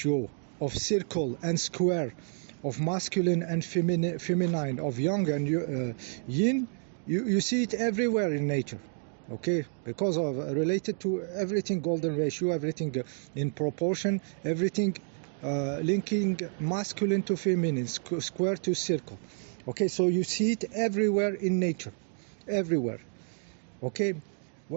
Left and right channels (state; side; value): silent; left; 58 dB below the other